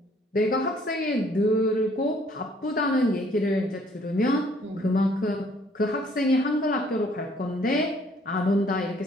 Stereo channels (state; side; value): normal; both; correlation 0.62